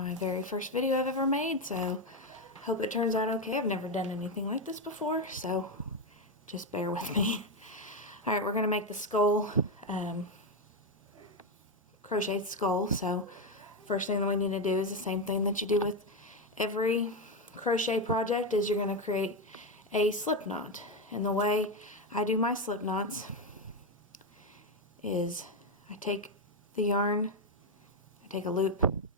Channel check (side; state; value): both; normal; correlation 0.08